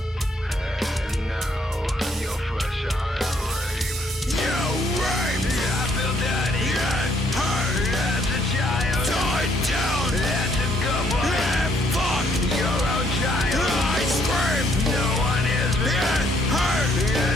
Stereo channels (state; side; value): normal; both; correlation 0.69